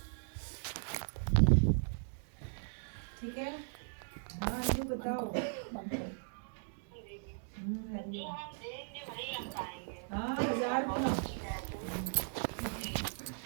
ठीक है, हाँ ये बताओ। हाँ 1000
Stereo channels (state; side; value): silent; left; digital silence